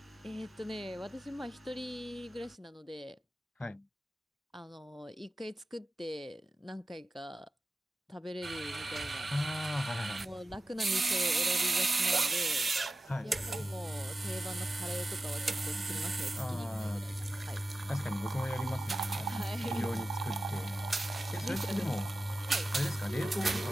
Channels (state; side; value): normal; both; correlation 0.94